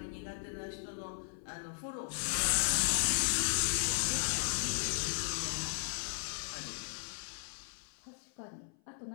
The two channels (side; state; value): right; silent; 54 dB below the other